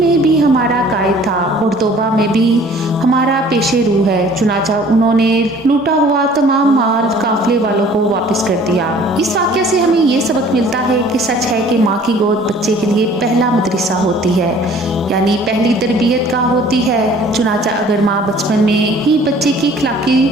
भी हमारा कायद था और तौबा में भी हमारा पेशे रूह है। चुनाचा उन्होंने लूटा हुआ तमाम माल काफले वालों को वापस कर दिया। इस वाक़या से हमें ये सबक मिलता है कि सच है कि माँ की गोद बच्चे के लिए पहला मदरसा होती है, यानी पहली तरबियत का होती है। चुनाचा अगर माँ बचपन में ही बच्चे की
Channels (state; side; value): normal; both; correlation 0.52